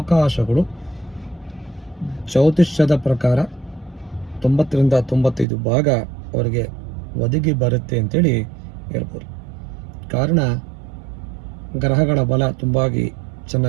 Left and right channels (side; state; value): left; drops out; at 5.5 s